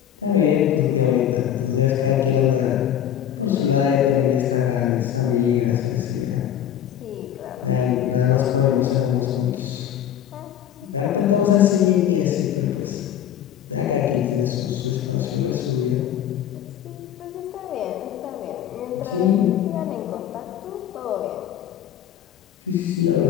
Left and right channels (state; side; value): quieter; right; 10.1 dB